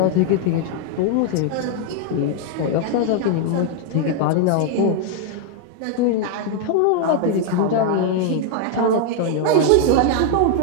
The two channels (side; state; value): both; different; correlation 0.00